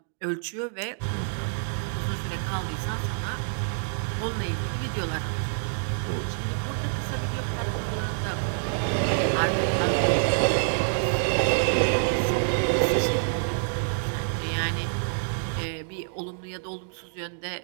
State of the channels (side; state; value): left; silent; digital silence